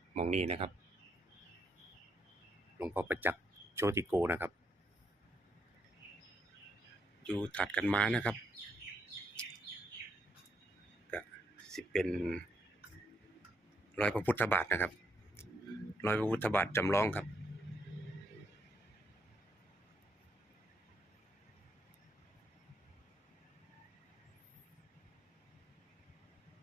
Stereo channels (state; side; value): normal; both; correlation 0.76